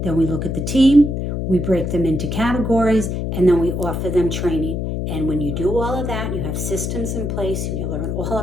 Then we look at the team, we break them into categories, and then we offer them training. And when you do all of that, you have systems in place, and you learn all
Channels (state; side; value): noise; left; hum, 2 dB below the sound